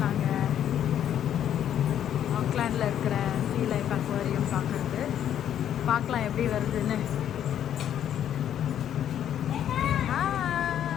நாங்கள் ஆக்லாண்டில் இருக்கிற சீ லைஃப் அக்வாரியம் பார்க்குறது. பார்க்கலாம் எப்படி வருதுன்னு.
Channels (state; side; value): quieter; right; 10.1 dB